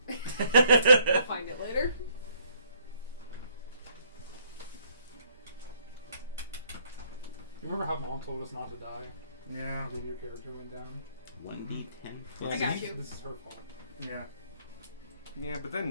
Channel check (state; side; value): inverted; both; correlation -0.66